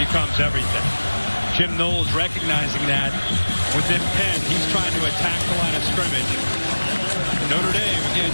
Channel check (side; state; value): both; inverted; correlation -1.00